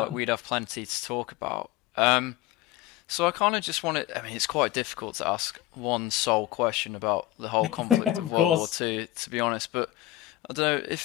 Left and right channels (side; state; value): right; quieter; 15.7 dB